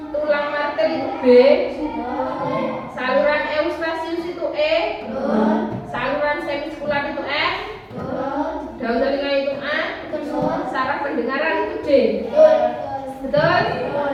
Tulang martel itu B. Saluran eustasius itu E. Saluran semiskular itu F. Daun telinga itu A. Saraf pendengaran itu D. Betul?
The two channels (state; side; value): identical; both; correlation 1.00